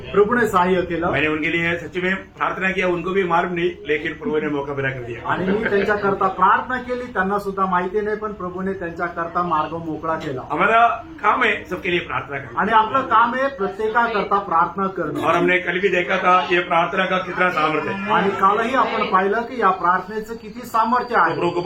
प्रभूने सहाय्य केलं। मैंने उनके लिए सच में प्रार्थना किया, उनको भी मालूम नहीं लेकिन प्रभु ने मौका पैदा कर दिया। आणि मी त्यांच्याकरता प्रार्थना केली, त्यांना सुद्धा माहिती नाही पण प्रभूने त्यांच्याकरता मार्ग मोकळा केला। हमारा काम है सबके लिए प्रार्थना करना आणि आपलं काम आहे प्रत्येकाकरता प्रार्थना करणं। और हमने कल भी देखा था ये प्रार्थना का कितना सामर्थ्य है। आणि कालही आपण पाहिलं की या प्रार्थनेचं किती सामर्थ्य आहे। प्रभु को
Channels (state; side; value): identical; both; correlation 1.00